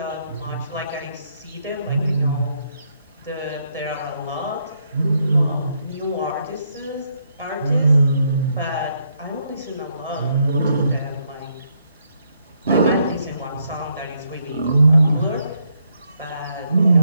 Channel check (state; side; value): inverted; both; correlation -0.75